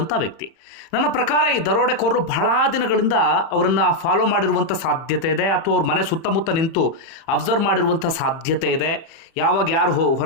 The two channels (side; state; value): right; late; 30 ms